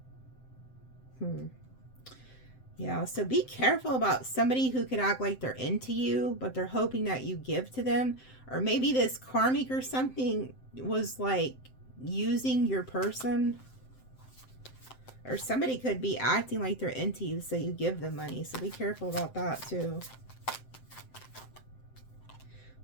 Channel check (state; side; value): late; right; 7.7 ms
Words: Yeah, so be careful about somebody who could act like they're into you, but they're hoping that you give to them. Or maybe this karmic or something was like using your person. Or somebody could be acting like they're into you, so you give them money. So be careful about that too.